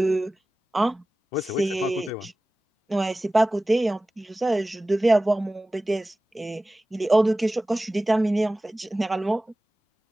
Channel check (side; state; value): both; normal; correlation 0.97